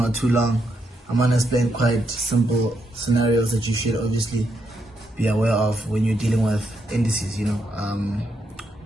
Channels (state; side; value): normal; both; correlation 0.80